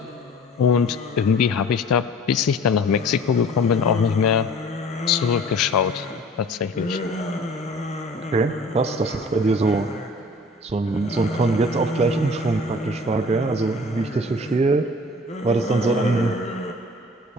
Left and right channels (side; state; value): both; normal; correlation 0.46